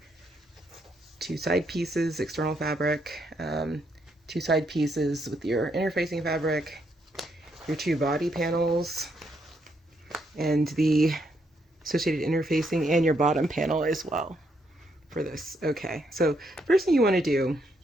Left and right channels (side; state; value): both; normal; correlation 0.76